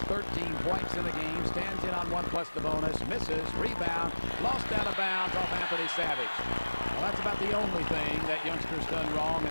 13 points in the game, stands in on 1+ the bonus, misses, rebound, lost out of bounds off Anthony Savage. Well, that's about the only thing that youngster's done wrong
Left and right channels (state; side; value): inverted; both; correlation -1.00